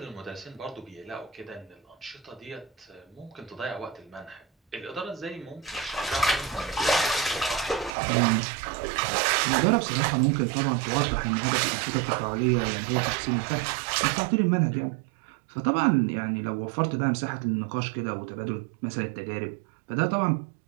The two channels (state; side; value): drops out; left; at 7.9 s